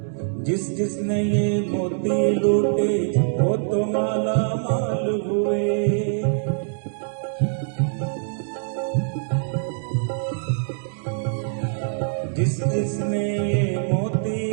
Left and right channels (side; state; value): left; silent; digital silence